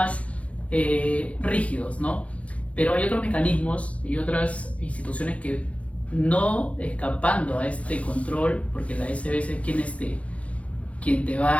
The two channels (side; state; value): right; late; 0.064 ms